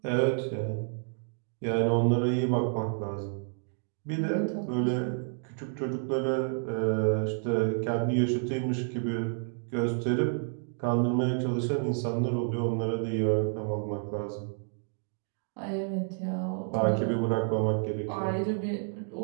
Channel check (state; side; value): silent; left; 58 dB below the other